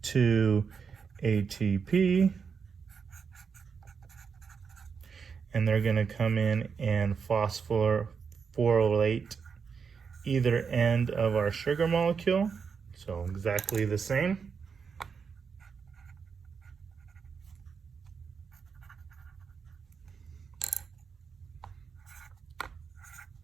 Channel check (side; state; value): left; quieter; 6.0 dB